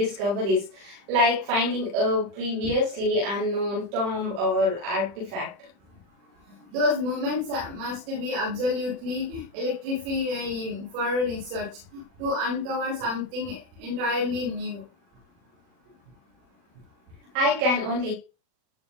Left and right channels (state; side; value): late; left; 40 ms